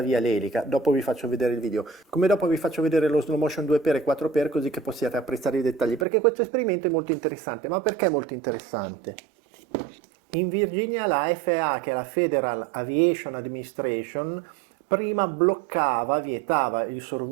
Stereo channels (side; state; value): left; drops out; at 6.1 s